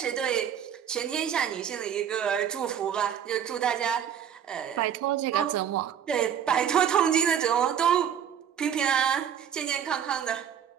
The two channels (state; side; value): quieter; left; 8.8 dB